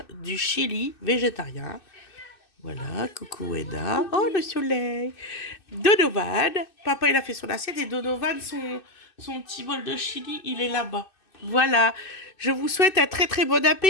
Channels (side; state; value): right; late; 2.6 ms